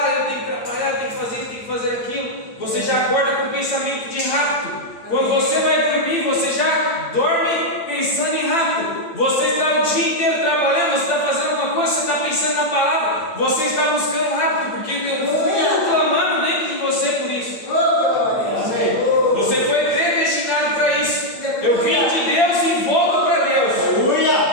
tenho que trabalhar, eu tenho que fazer isso, tenho que fazer aquilo. Você já acorda com pensamento de rapto. Quando você vai dormir, você já dorme pensando em rapto. Você está o dia inteiro trabalhando, você está fazendo alguma coisa, você está pensando na palavra, você está buscando rapto, porque tem um fogo clamando dentro de você por isso. Você foi predestinado para isso. Eu vim de Deus e volto para Deus.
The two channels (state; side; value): late; right; 8.8 ms